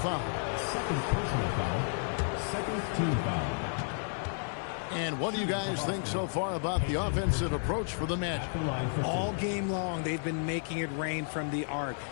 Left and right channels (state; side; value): silent; right; 56 dB below the other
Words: Second personal foul. Second team foul. And what do you guys think so far about the offensive approach for the Magic? All game long, they've been making it rain from the arc.